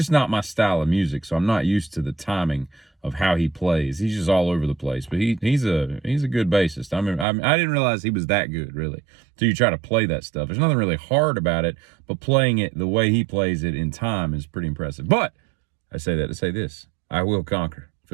not my style of music, so I'm not used to the timing of how he plays. He's just all over the place, but he's a good bassist. I didn't realize he was that good, really, until you try to play that stuff. There's nothing really hard about it, but playing it the way he plays it in time is pretty impressive. But I say that to say this: I will conquer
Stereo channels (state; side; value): drops out; left; at 7.2 s